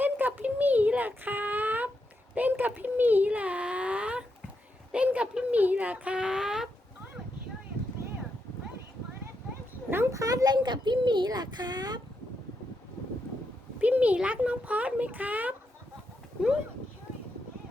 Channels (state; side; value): normal; both; correlation 0.83